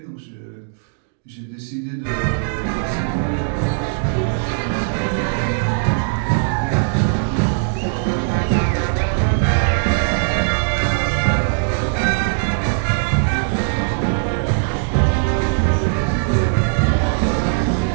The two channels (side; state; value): left; silent; digital silence